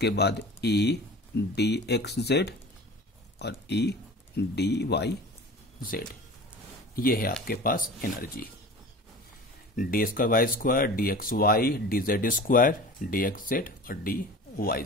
बाद ई डी एक्स जेड और ई डी वाई जेड। ये है आपके पास energy, D square Y square, D x Y, D Z square, D x Z और डी वाई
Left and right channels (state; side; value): normal; both; correlation 0.38